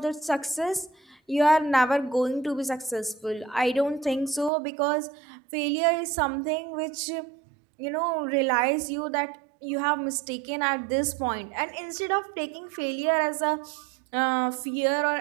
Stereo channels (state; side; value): drops out; left; at 4.5 s